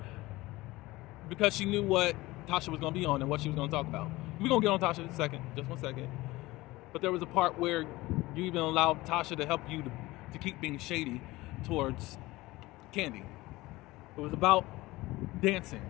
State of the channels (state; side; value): quieter; right; 19.6 dB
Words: because she knew what Tasha was going to be on and what she was going to talk about. We're going to get on Tasha in a second, just 1 second. But there was a part where you even allowed Tasha to help you to keep being shady towards Candy. It was about dancing.